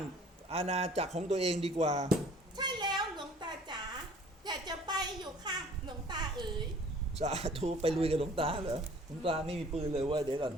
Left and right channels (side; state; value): both; normal; correlation 0.52